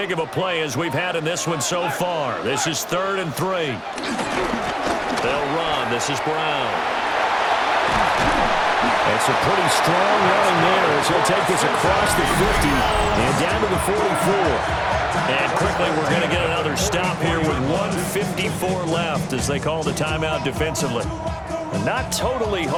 of a play as we've had in this one so far. This is 3rd and 3. They'll run. This is Brown. It's a pretty strong run there as he'll take this across the 50 and down to the 44. And quickly, we're going to get another stop here with 1:54 left as they call the timeout defensively. And not totally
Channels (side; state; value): both; identical; correlation 1.00